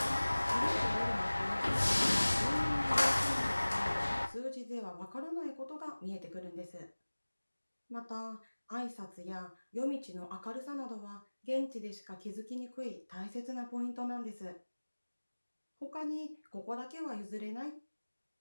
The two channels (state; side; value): inverted; both; correlation -1.00